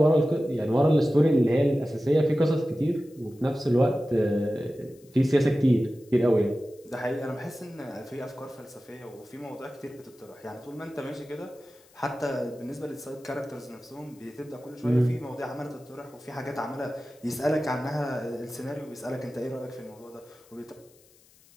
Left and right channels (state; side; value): noise; left; hiss, 29 dB below the sound